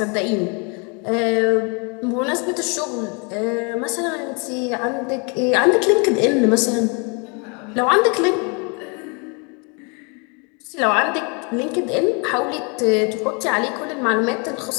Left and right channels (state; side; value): quieter; right; 33.7 dB